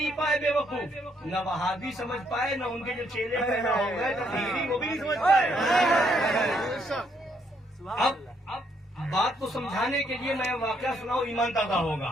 پائے بے وقوف، نہ وہابی سمجھ پائے، نہ ان کے جو چیلے پیدا ہو گئے تقریری وہ بھی نہیں سمجھ پائے۔ اب بات کو سمجھانے کے لیے میں واقعہ سناؤں، ایمان تازہ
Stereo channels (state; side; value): normal; both; correlation 0.72